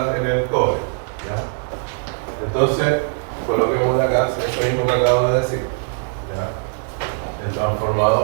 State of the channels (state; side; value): silent; left; digital silence